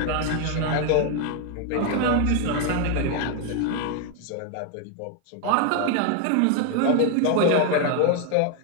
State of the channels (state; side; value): different; both; correlation 0.01